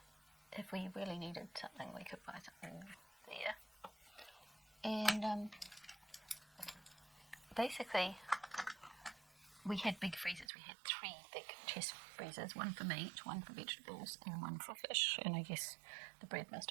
if we really needed something, we could buy something there. And basically, we had big freezers. We had 3 big chest freezers, one for meat, one for vegetables, and one for fish. And I guess the bread must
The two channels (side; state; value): left; drops out; at 10.5 s